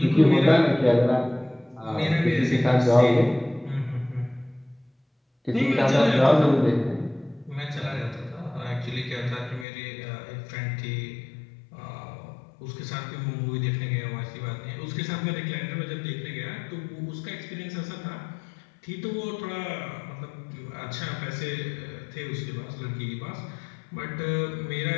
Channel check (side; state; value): right; drops out; at 9.7 s